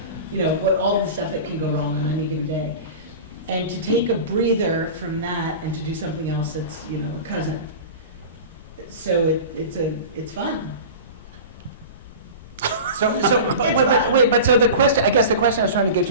what all the stuff that can go wrong on any given day. And to take a breather from that and to do something else that's, a cousin. So it's fun. But so the question, I guess the question I was trying to get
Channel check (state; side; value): inverted; both; correlation -0.33